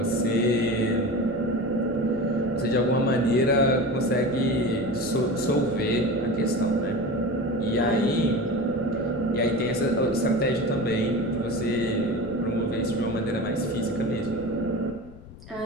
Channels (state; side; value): noise; left; rumble, 18 dB below the sound